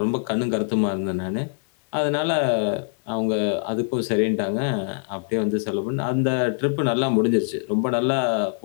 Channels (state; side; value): silent; right; 55 dB below the other